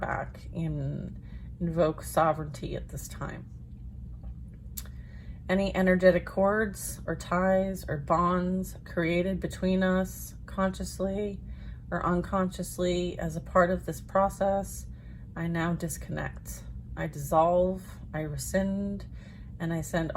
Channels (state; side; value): identical; both; correlation 1.00